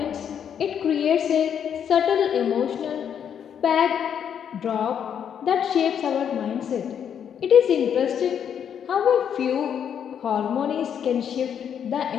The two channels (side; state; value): right; quieter; 8.4 dB